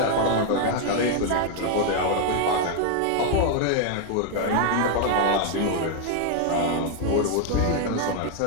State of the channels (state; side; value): different; both; correlation 0.00